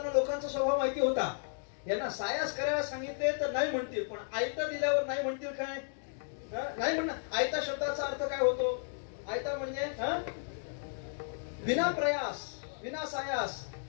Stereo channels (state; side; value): silent; right; digital silence